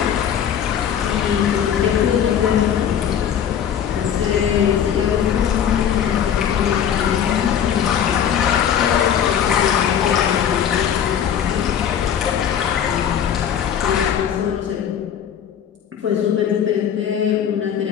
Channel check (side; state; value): right; quieter; 8.9 dB